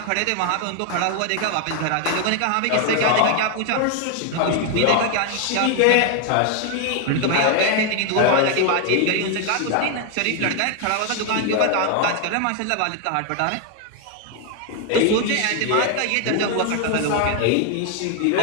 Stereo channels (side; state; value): both; different; correlation 0.01